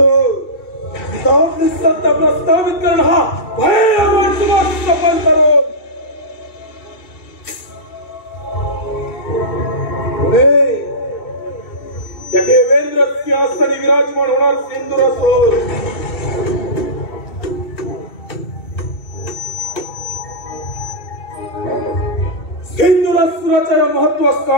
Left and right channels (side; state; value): right; late; 2.7 ms